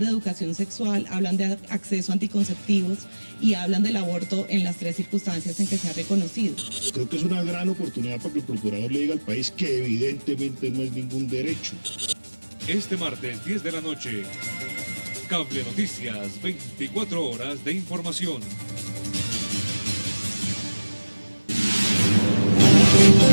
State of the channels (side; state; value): both; inverted; correlation -1.00